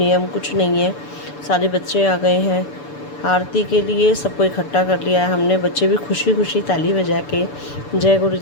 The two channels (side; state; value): right; late; 6.9 ms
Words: कुछ नहीं है। सारे बच्चे आ गए हैं आरती के लिए, सबको इकट्ठा कर लिया है हमने। बच्चे भी खुशी खुशी ताली बजा के जय गुरु